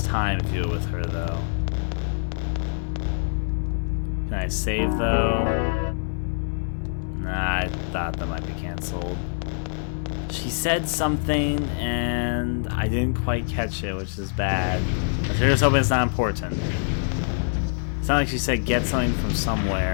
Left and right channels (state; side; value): silent; right; 62 dB below the other